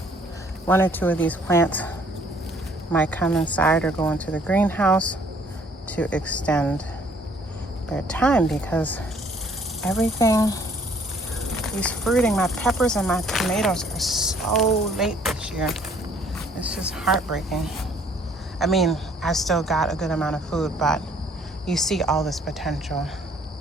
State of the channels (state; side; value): normal; both; correlation 0.61